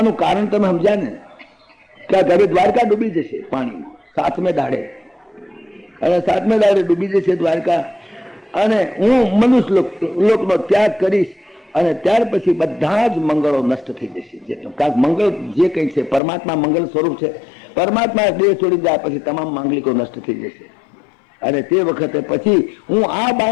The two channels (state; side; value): drops out; right; at 16.2 s